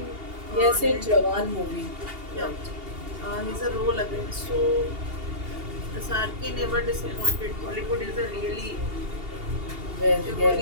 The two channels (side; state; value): left; late; 2.8 ms